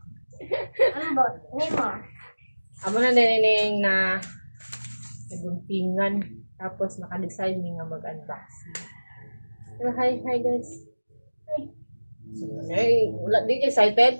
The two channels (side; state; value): both; inverted; correlation -1.00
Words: Ambot, nimo. Amo na nining na naguntingan tapos naka-decide mi nga mag-unboxing. So, hi guys. Ay, wala di